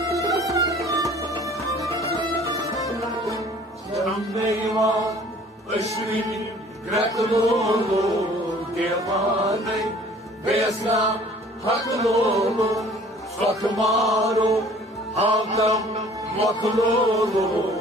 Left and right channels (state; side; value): normal; both; correlation 0.52